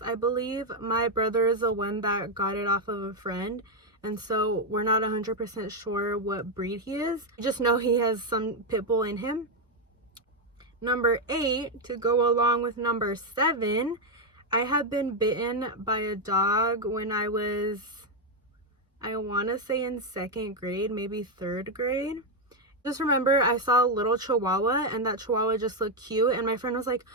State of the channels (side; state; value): both; normal; correlation 0.03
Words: I believe. My brother is the one that got it off of a friend, and so we're not 100% sure what breed he is. I just know he has some pit bull in him. Number 8, to go along with number 7, I have been bitten by a dog when I was, I want to say in 2nd grade, maybe 3rd grade. Just remember I saw a little chihuahua, and that chihuahua just looked cute, and my friend was like,